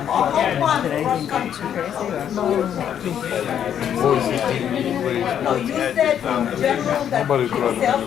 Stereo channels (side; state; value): right; quieter; 9.3 dB